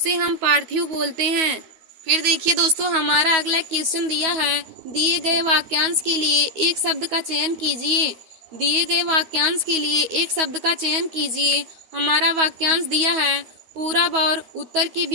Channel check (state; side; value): late; left; 13 ms